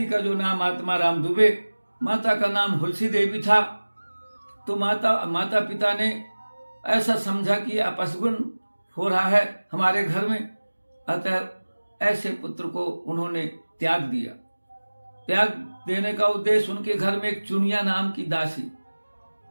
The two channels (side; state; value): both; inverted; correlation -1.00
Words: का जो नाम आत्माराम दुबे, माता का नाम हुलसी देवी था, तो माता पिता ने ऐसा समझा कि अपशगुन हो रहा है हमारे घर में, अतः ऐसे पुत्र को उन्होंने त्याग दिया। त्याग देने का उद्देश्य उनके घर में एक चुनिया नाम की दासी,